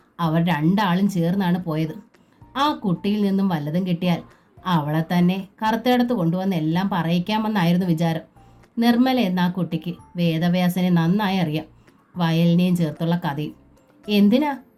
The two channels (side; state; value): both; identical; correlation 1.00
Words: അവർ രണ്ടാളും ചേർന്നാണ് പോയത്. ആ കുട്ടിയിൽ നിന്നും വല്ലതും കിട്ടിയാൽ അവളെ തന്നെ കറുത്തേടത്ത് കൊണ്ടുവന്ന് എല്ലാം പറയിക്കാമെന്നായിരുന്നു വിചാരം. നിർമ്മല എന്ന ആ കുട്ടിക്ക് വേദവ്യാസനെ നന്നായി അറിയാം. വയലിനെയും ചേർത്തുള്ള കഥയും. എന്തിനാ